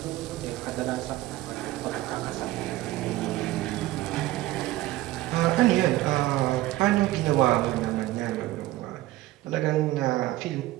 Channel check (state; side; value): quieter; left; 16.7 dB